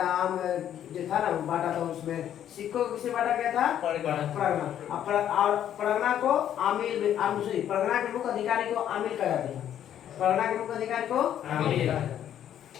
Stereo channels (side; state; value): right; quieter; 10.4 dB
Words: जो था ना बांटा था, उसमें सिक्कों को किसे बांटा गया था? परगना। और परगना को आमिल में परगना के मुख्य अधिकारी को आमिल कहा जाता था। परगना के मुख्य अधिकारी को आमिल।